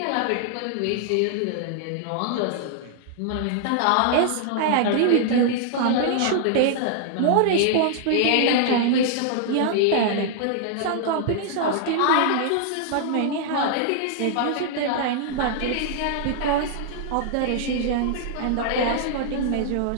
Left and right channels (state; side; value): different; both; correlation -0.01